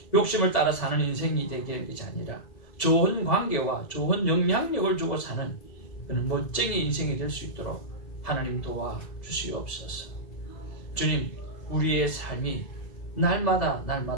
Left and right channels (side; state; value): right; late; 1.7 ms